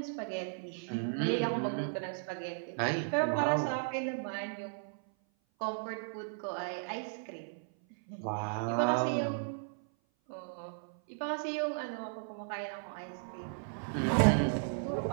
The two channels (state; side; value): silent; left; 54 dB below the other